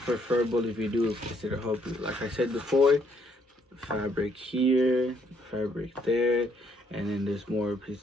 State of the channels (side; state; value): both; normal; correlation 0.69